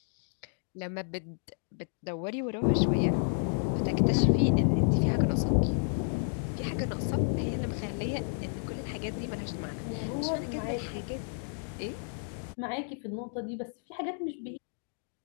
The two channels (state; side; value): silent; right; digital silence